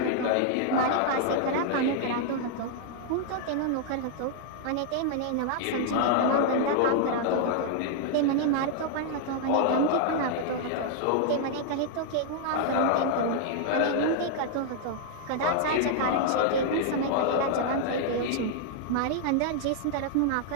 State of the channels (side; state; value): both; different; correlation -0.01